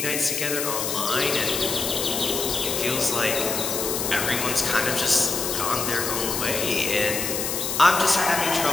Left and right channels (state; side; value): noise; left; hiss, 2 dB below the sound